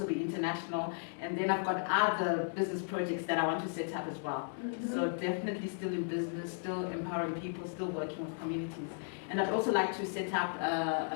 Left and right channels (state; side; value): silent; right; digital silence